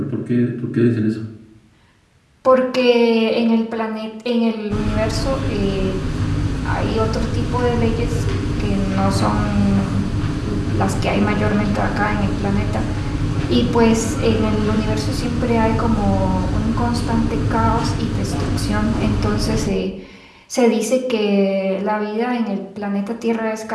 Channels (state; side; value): identical; both; correlation 1.00